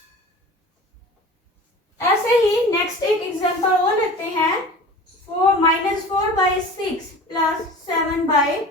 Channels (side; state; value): both; normal; correlation 0.39